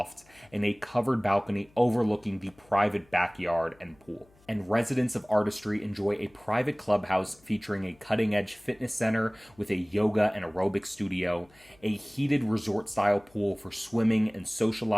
and a covered balcony overlooking the private backyard and pool. And residents of Artistry enjoy a private clubhouse featuring a cutting-edge fitness center with a yoga and aerobic studio, a heated resort-style pool for swimming and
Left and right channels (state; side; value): noise; left; hum, 30 dB below the sound